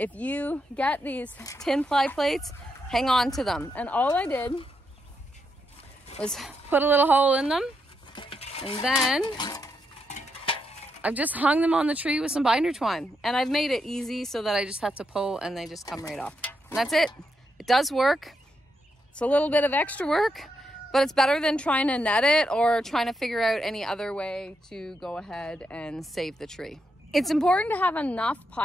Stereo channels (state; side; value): normal; both; correlation 0.82